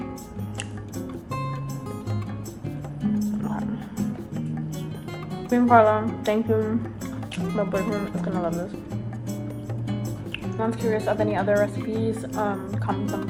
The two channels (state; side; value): identical; both; correlation 1.00